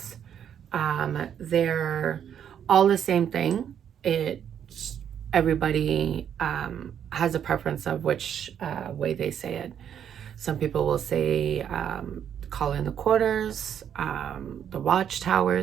They're all the same thing. Everybody has a preference of which way they say it. Some people will say call in the quarters. The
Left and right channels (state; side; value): quieter; left; 8.9 dB